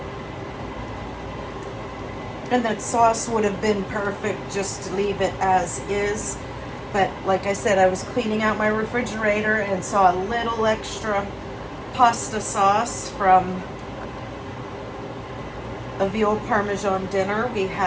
And that sauce would have been perfect just to leave it as is. But like I said, I was cleaning out my refrigerator and saw a little extra pasta sauce from a veal parmesan dinner we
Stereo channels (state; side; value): identical; both; correlation 1.00